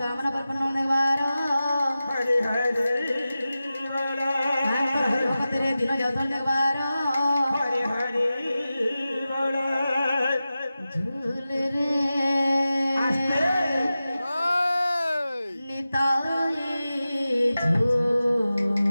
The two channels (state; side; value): inverted; both; correlation -0.94